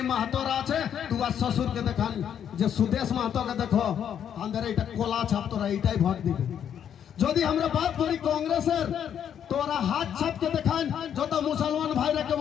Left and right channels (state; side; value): quieter; right; 9.0 dB